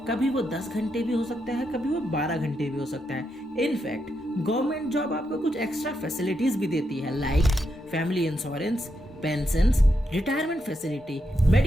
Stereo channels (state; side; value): normal; both; correlation 0.82